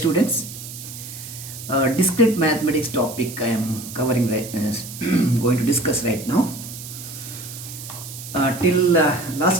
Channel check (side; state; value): right; noise; hiss, 12 dB below the sound